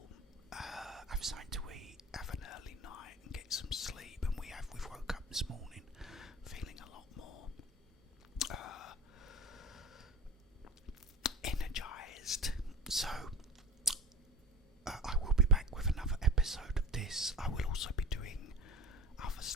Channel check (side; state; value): both; normal; correlation 0.31